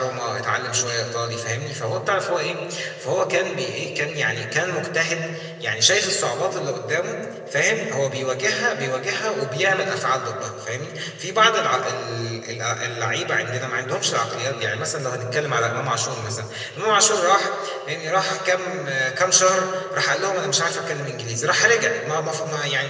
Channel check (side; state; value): both; identical; correlation 1.00